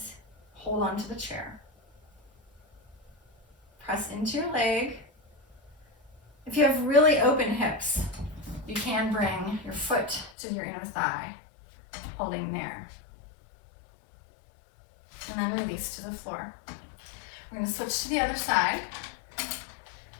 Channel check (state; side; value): drops out; right; at 10.3 s